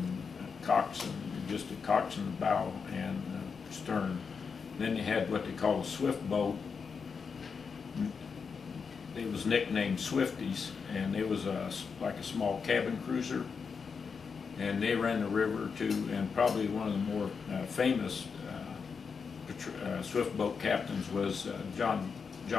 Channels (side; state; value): right; quieter; 5.7 dB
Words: just a coxswain bow and stern. Then they had what they call a swift boat. It was nicknamed Swifties, and it was like a small cabin cruiser, and they ran the river too. And probably one of the more famous swift boat captains was